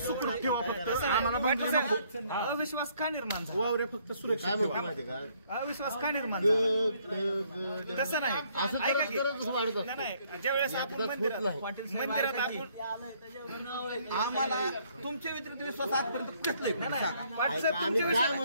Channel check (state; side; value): inverted; both; correlation -0.66